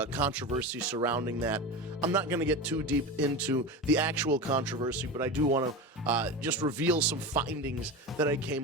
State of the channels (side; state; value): both; normal; correlation 0.25